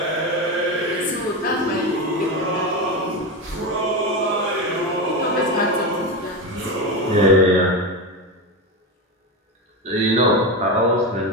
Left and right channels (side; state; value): both; normal; correlation 0.16